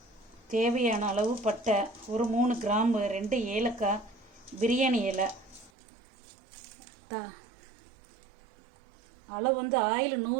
தேவையான அளவு பட்டை, ஒரு 3 கிராம்பு, 2 ஏலக்காய், பிரியாணி இலை. அளவு வந்து ஆயில்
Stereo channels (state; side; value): drops out; left; at 5.7 s